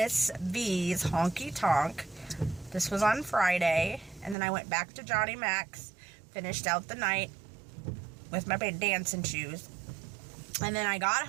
V's Honky Tonk. This was on Friday. And then I went back to Johnny Mac's, finished out the night with my big dancing shoes. And then I got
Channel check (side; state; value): left; drops out; at 4.4 s